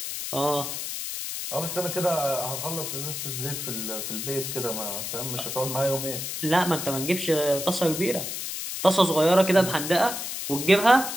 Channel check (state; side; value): noise; left; hiss, 5 dB below the sound